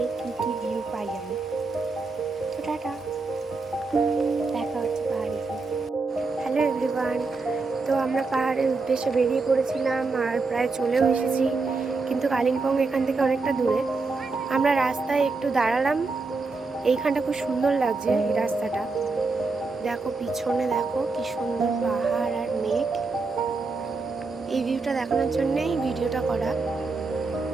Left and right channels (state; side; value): quieter; left; 4.0 dB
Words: কী কী ভিউ পাই আমি। তো টাটা, দেখা হচ্ছে পাহাড়ে গিয়ে। হ্যালো এভরিওয়ান, তো আমরা পাহাড়ের উদ্দেশ্যে বেরিয়ে পড়েছিলাম আর প্রায় চলেও এসেছি, কিন্তু কালিম্পং এখান থেকে অনেকটা দূরে। আমরা রাস্তায় একটু দাঁড়ালাম, এইখানটা খুব সুন্দর লাগছে এই রাস্তাটা। দেখো পিছনে, দেখো কি সুন্দর পাহাড় আর মেঘ। এই ভিউটা দেখানোর জন্যই ভিডিওটা করা।